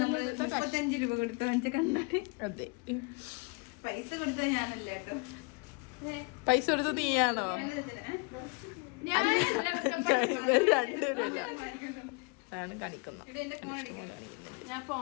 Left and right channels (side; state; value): right; quieter; 31.0 dB